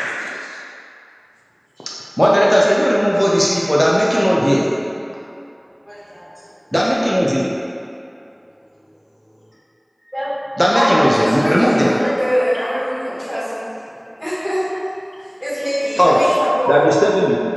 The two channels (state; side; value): identical; both; correlation 1.00